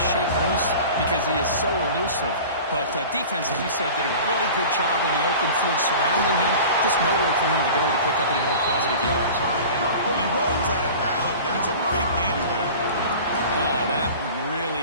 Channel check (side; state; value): both; inverted; correlation -0.38